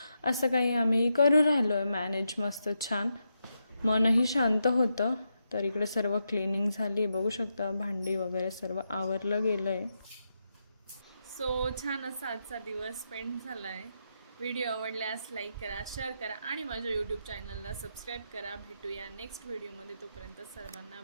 असं काही आम्ही करू राहिलो आहे मॅनेज. मस्त छान, मनही शांत होतं. तर इकडे सर्व क्लिनिंग झाली, बघू शकता भांडी वगैरे सर्व आवरलं गेलं आहे. सो छान असा आजचा दिवस स्पेंड झाला आहे. व्हिडिओ आवडल्यास लाईक करा, शेअर करा आणि माझ्या यूट्यूब चॅनलला सबस्क्राईब करा. भेटूया नेक्स्ट व्हिडिओमध्ये. तोपर्यंत सर्वांना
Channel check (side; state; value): both; inverted; correlation -0.85